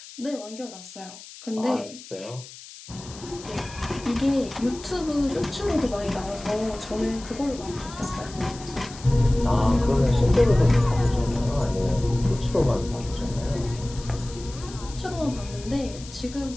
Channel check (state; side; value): noise; left; hiss, 16 dB below the sound